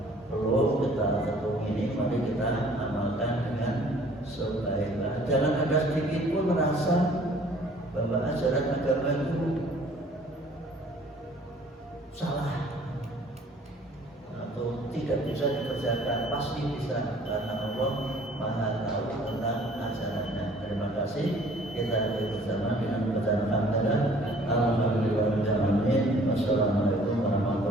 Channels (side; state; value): both; normal; correlation 0.55